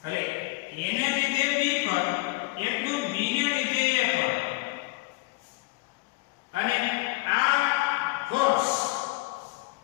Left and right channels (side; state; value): right; quieter; 23.2 dB